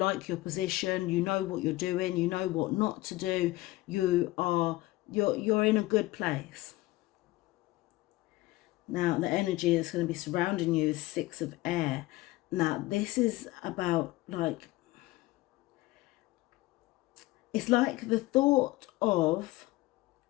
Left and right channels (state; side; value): quieter; right; 18.8 dB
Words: your position. You know what you're doing. You know what not to do. You're in a good place. Now the energy that's going to be surrounding you is 6 of air. Now this is about, like, it's like the thought of